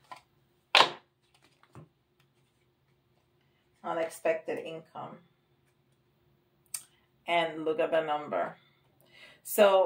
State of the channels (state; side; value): identical; both; correlation 1.00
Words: Unexpected income. And look at the number.